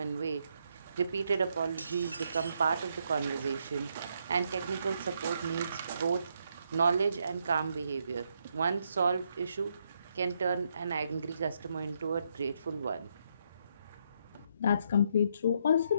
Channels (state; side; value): inverted; both; correlation -0.76